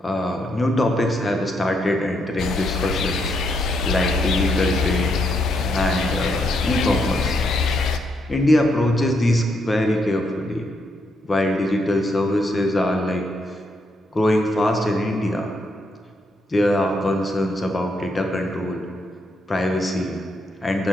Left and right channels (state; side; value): normal; both; correlation 0.77